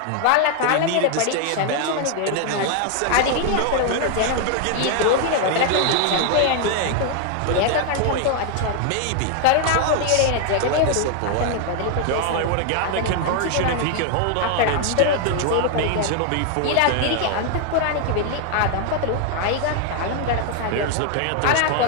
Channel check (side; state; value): both; different; correlation 0.00